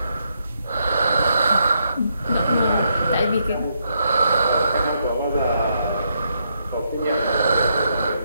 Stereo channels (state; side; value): inverted; both; correlation -0.78